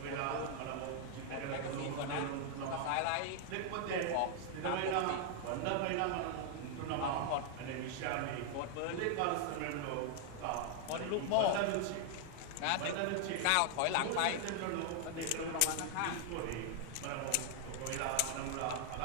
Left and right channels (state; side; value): different; both; correlation 0.00